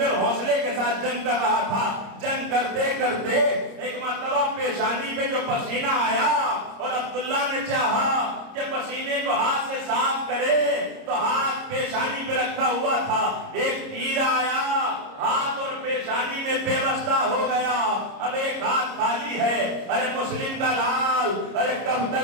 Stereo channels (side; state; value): left; late; 30 ms